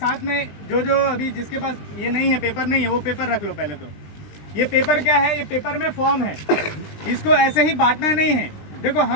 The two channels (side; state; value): right; late; 20 ms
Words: में जो अभी जिसके पास ये नहीं है, पेपर नहीं है, वो पेपर रख लो पहले। तो ये पेपर क्या है, ये पेपर में फॉर्म है, इसको ऐसे ही बांटना नहीं है। देखो,